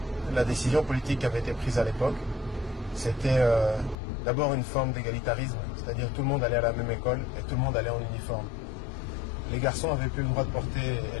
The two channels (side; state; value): right; drops out; at 4.0 s